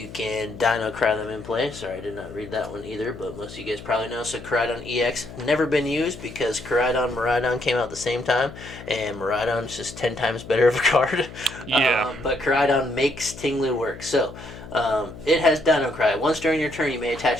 can Dino Cry them in play. Sorry, I did not read that one either, but most of you guys probably know. So Koraidon EX, never been used because Koraidon, Miraidon came out at the same time, and Miraidon's just 10 times better of a card. Yeah. But Koraidon makes Ting-Lu work. So it has Dino Cry. Once during your turn, you may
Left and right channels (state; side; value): noise; left; hum, 14 dB below the sound